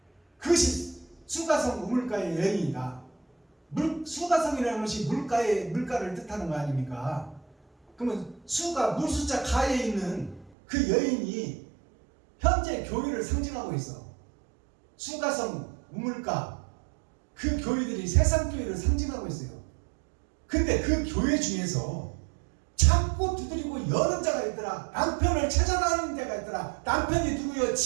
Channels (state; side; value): drops out; left; at 10.5 s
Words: 그것이 수가성 우물가의 여인이다. 수가성이라는 것이 물가를 뜻하는 거 아닙니까? 그러면 수가 물숫자 가에 있는 그 여인이 현재 교회를 상징하고 있어. 수가성 우물가 그 교회들이 세상 교회를 상징하고 있어요. 근데 그 교회 중에서 찾고 두드리고 여는 자가 있더라. 남편을 찾아다니는 자가 있더라. 남편이 누구요?